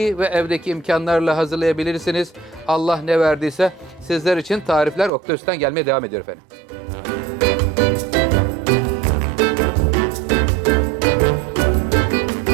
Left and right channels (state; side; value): drops out; left; at 5.1 s